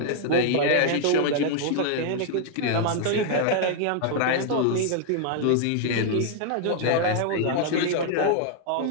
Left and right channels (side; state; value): both; different; correlation -0.01